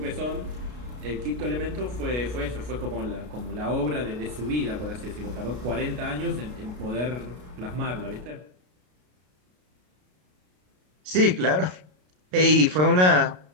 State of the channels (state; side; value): late; left; 33 ms